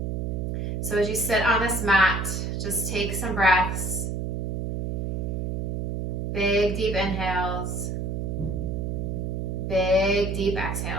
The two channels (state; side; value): noise; right; hum, 1 dB below the sound